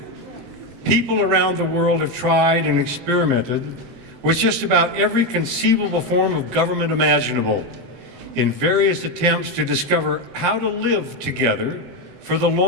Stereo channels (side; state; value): left; late; 7.8 ms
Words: people around the world have tried and experimented with just about every conceivable form of government imaginable in various attempts to discover how to live together for the